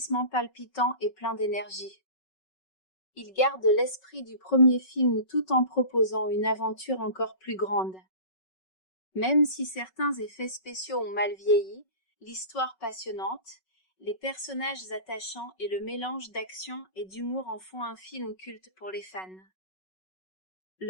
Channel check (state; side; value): late; right; 5.3 ms